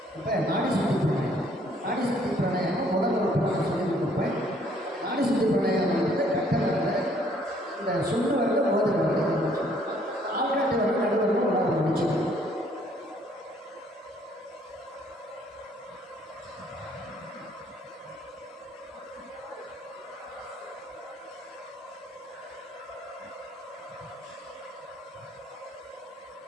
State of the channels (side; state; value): both; normal; correlation 0.63